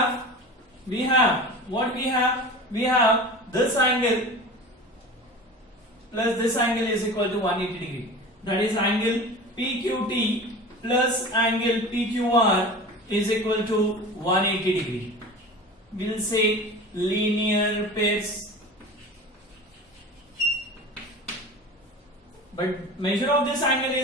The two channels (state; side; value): normal; both; correlation 0.35